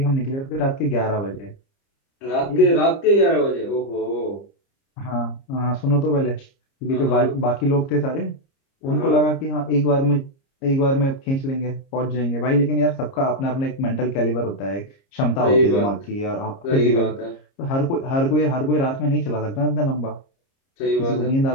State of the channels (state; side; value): late; right; 30 ms